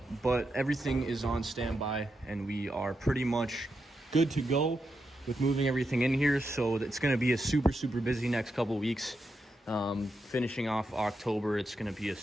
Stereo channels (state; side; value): normal; both; correlation 0.85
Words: but everything is on standby, and we are pretty much good to go with moving everything in here. So it's going to be a super busy next couple weeks. Finishing off October, it's going to be a